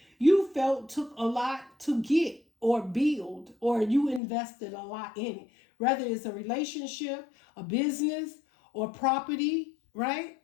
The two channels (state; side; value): drops out; right; at 4.2 s